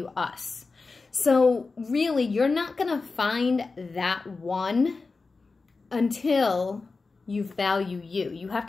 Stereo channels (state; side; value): quieter; right; 4.1 dB